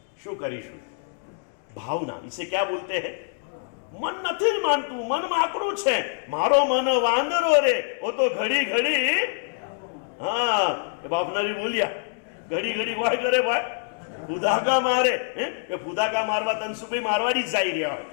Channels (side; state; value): right; silent; digital silence